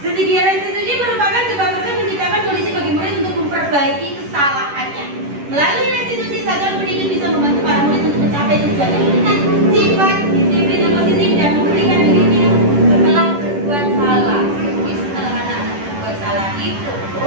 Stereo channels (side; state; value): left; late; 10 ms